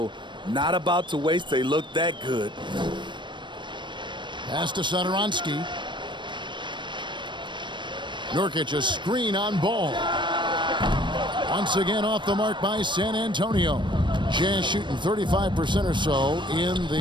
Not about to waste. They look that good. Pass to Satoransky. Nurkic a screen on Ball. Once again off the mark by San Antonio. Jazz shooting 35% or so in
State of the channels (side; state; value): left; late; 0.22 ms